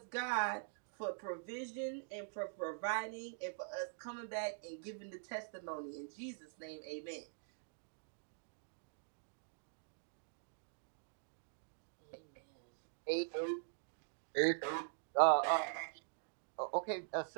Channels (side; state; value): left; silent; digital silence